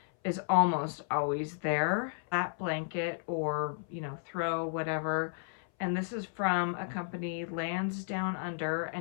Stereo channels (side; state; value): right; silent; 56 dB below the other